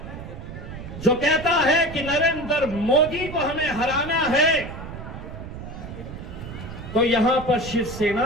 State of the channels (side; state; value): right; noise; rumble, 11 dB below the sound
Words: जो कहता है कि नरेंद्र मोदी को हमें हराना है तो यहां पर